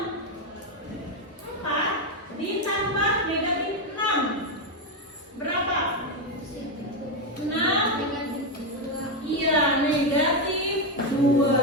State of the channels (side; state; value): both; normal; correlation 0.06